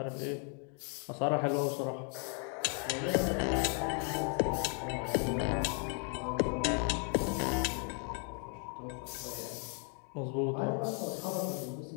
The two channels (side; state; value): right; quieter; 39.5 dB